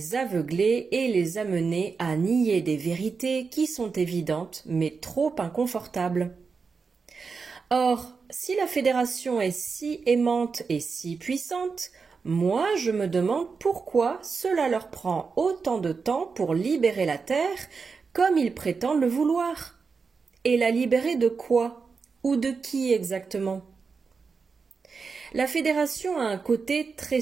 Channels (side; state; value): left; quieter; 5.1 dB